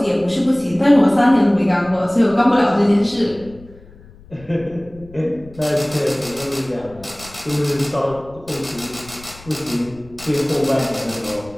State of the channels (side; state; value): left; noise; rumble, 21 dB below the sound